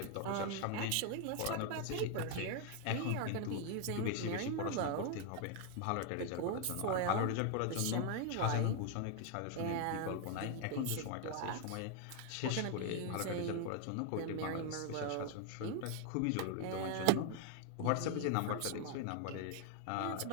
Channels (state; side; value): different; both; correlation 0.00